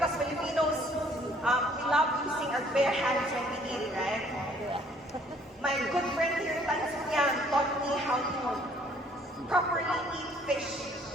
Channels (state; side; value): normal; both; correlation 0.60